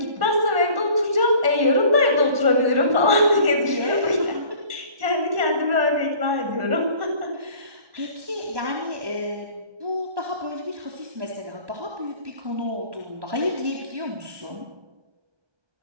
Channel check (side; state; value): left; late; 1.1 ms